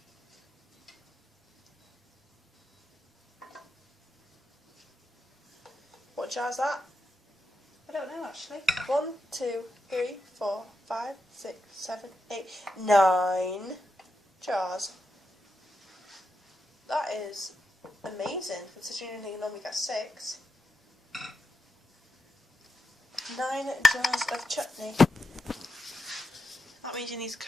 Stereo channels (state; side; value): normal; both; correlation 0.86